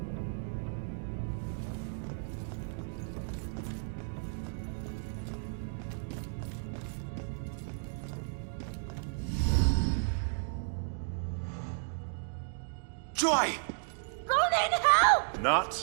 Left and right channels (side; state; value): left; silent; digital silence